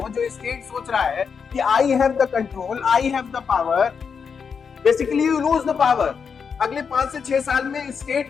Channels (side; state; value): right; quieter; 6.2 dB